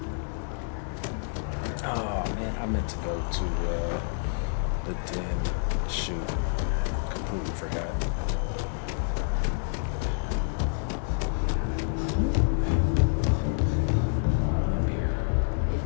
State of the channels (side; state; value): right; silent; digital silence